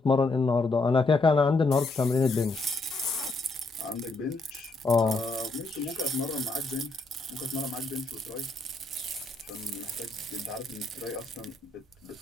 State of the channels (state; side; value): quieter; right; 3.2 dB